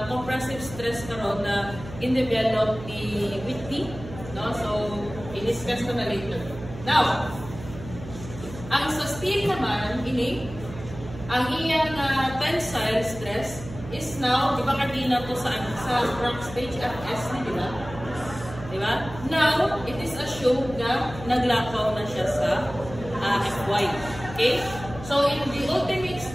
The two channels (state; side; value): noise; right; hum, 13 dB below the sound